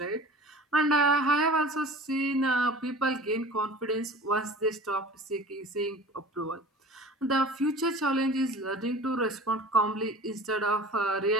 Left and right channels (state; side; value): normal; both; correlation 0.40